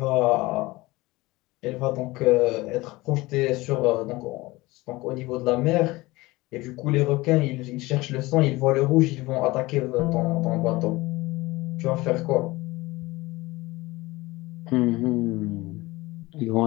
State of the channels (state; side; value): quieter; right; 20.8 dB